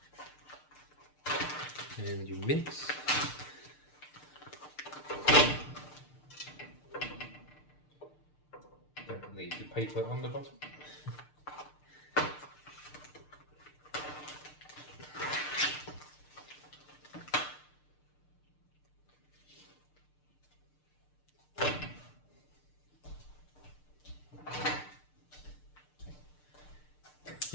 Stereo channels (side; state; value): right; late; 6.7 ms